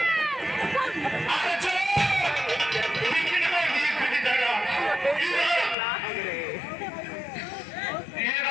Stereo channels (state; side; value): drops out; right; at 5.8 s